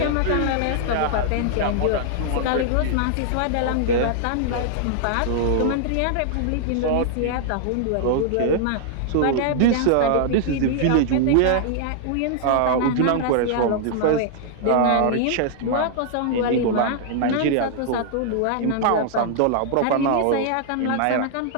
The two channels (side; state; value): both; different; correlation -0.01